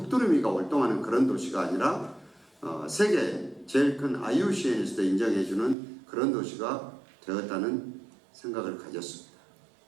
활동하는 그런 도시가 아니라 세계 제일 큰 IUCN에서도 인정해주는 그런 도시가 되었다는 생각을 가졌습니다.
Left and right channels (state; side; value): drops out; left; at 5.8 s